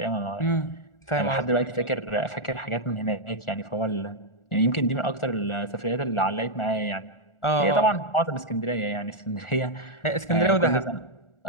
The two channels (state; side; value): late; right; 1.4 ms